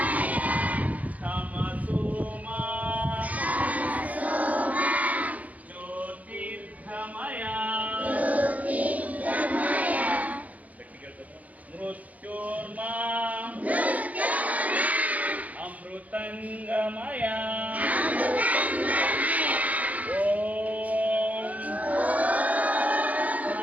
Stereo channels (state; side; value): late; left; 0.073 ms